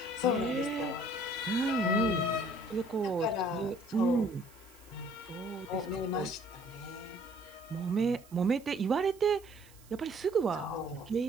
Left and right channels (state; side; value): noise; right; hiss, 25 dB below the sound